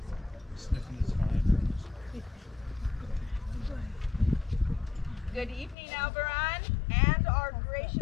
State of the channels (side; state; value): right; drops out; at 5.8 s